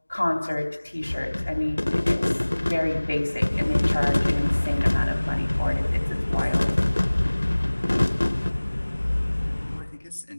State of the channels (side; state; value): both; inverted; correlation -1.00